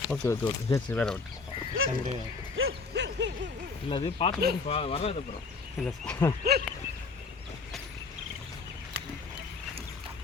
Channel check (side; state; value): right; quieter; 4.5 dB